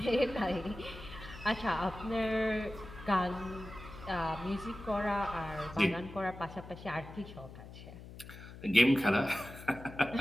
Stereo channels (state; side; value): noise; left; hum, 15 dB below the sound